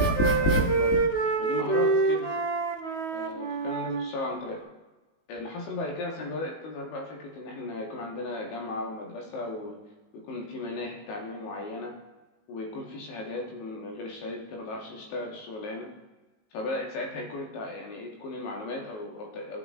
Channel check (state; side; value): late; right; 19 ms